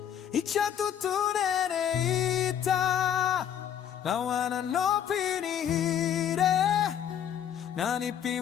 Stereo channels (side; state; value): right; quieter; 9.5 dB